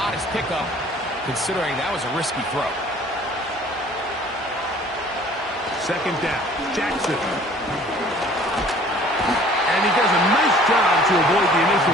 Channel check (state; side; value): normal; both; correlation 0.52